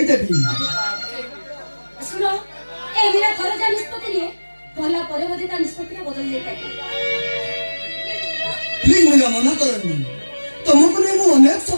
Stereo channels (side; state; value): both; inverted; correlation -1.00